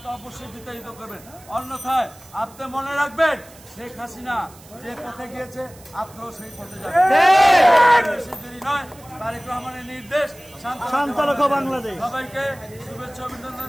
অবশ্যই বিতাড়িত করবেন। অন্যথায় আপনি মনে রাখবেন শেখ হাসিনা যে পথে গিয়েছে আপনিও সেই পথে যাবেন। বেশি দেরি নয়, তারেক রহমানের নির্দেশ বাংলাদেশ। সবাইকে শুভেচ্ছা অভিনন্দন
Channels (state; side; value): noise; right; hiss, 23 dB below the sound